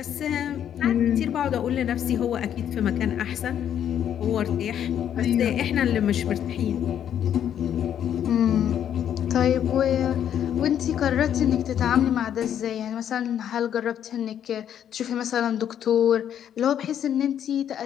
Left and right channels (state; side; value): quieter; right; 9.7 dB